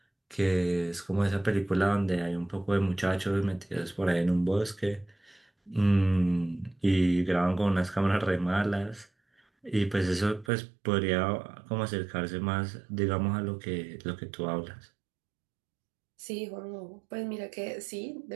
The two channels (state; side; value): drops out; left; at 10.5 s